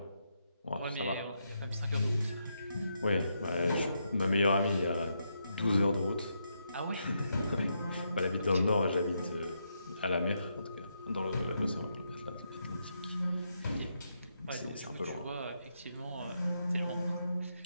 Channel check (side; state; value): both; inverted; correlation -0.81